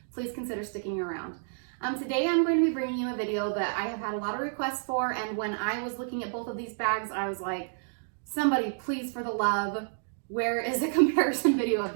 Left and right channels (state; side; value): silent; left; digital silence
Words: please consider sticking around. Today I'm going to be bringing you a video that I have had a lot of requests for, and when I was looking at both of these bags, I was like, somebody please, for the love, where is a comparison video of